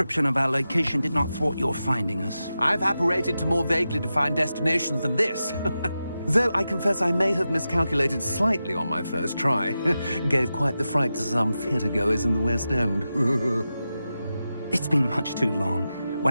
of our location did not thwart your finding us. I've apparated to more vaguely defined destinations than this. Though I confess I may have miscalculated slightly on my first try. Gave quite the fright to some theatre-goers in the West End. It's been much too long.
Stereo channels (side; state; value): both; inverted; correlation -0.91